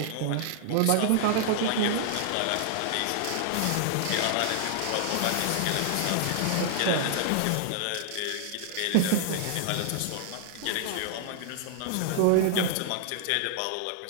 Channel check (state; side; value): different; both; correlation 0.00